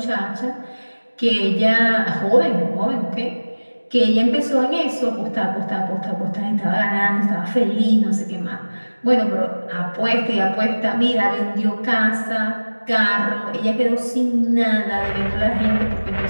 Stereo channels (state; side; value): inverted; both; correlation -1.00